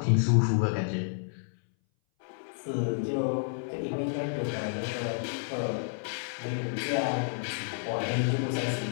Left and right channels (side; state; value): right; silent; 58 dB below the other